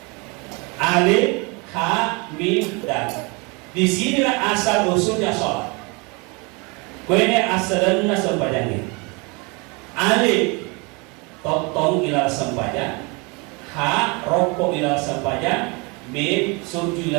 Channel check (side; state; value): left; quieter; 29.3 dB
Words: Alif, ha, mim, dan. Di sinilah asal usulnya sholat. Kuene asalnya sempajangnya. Alif, totong ilal sempajang. Ha, rokok ilal sempajang. Mim, suju